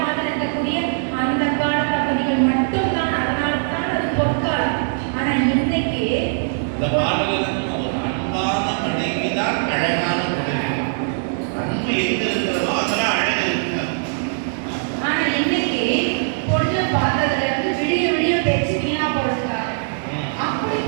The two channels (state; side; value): silent; left; digital silence